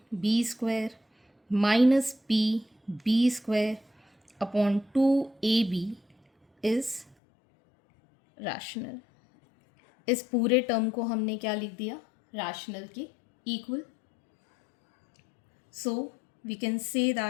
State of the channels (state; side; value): drops out; right; at 7.2 s